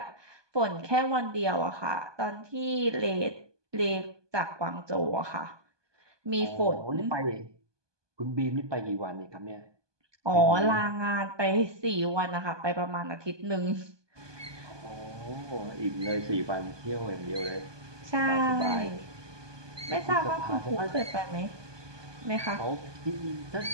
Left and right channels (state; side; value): late; left; 1.2 ms